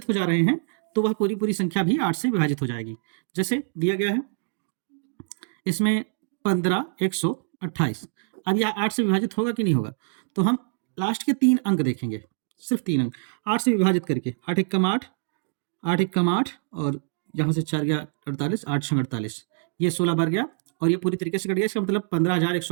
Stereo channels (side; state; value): left; silent; digital silence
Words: हो जा रहे हैं तो वह पूरी संख्या भी 8 से विभाजित हो जाएगी। जैसे दिया गया है इसमें 15, 128। अब यह 8 से विभाजित होगा कि नहीं होगा? तो हम लास्ट के 3 अंक देखेंगे, सिर्फ 3 अंक 8 से विभाजित करके। 8 एकम 8, 8 एकम 8 और यहाँ से 4 गया 48, 8 छंग 48, ये 16 बार गया और ये पूरी तरीके से कट गया। इसका मतलब